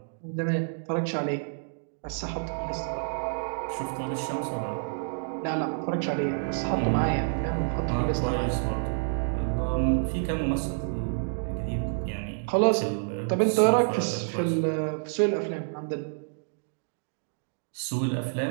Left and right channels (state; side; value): silent; left; digital silence